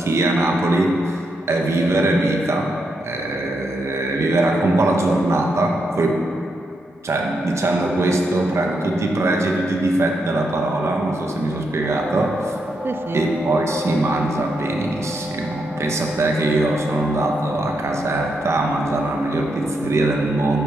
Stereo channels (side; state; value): both; normal; correlation 0.81